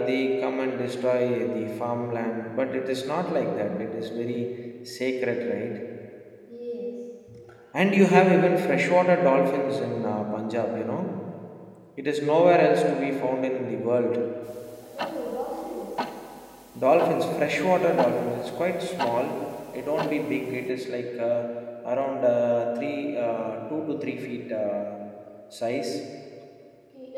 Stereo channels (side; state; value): both; identical; correlation 1.00